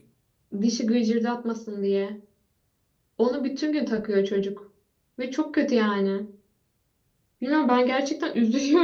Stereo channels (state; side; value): identical; both; correlation 1.00